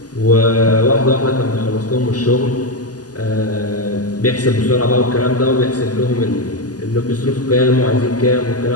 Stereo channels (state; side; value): late; right; 0.68 ms